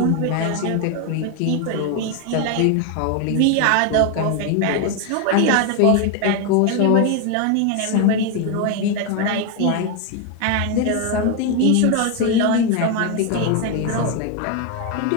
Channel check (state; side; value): different; both; correlation 0.01